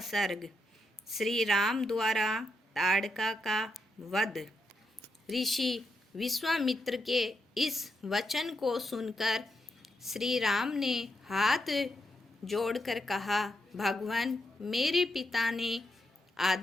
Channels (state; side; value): normal; both; correlation 0.83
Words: सर्ग। श्री राम द्वारा ताड़का का वध। ऋषि विश्वामित्र के इस वचन को सुनकर श्री राम ने हाथ जोड़कर कहा, भगवान, मेरे पिता ने